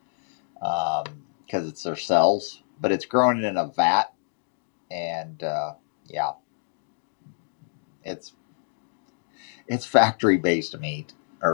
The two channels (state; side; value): silent; right; digital silence